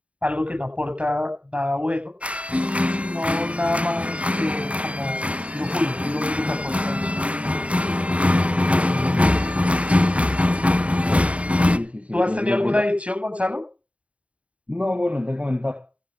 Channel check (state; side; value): late; left; 0.064 ms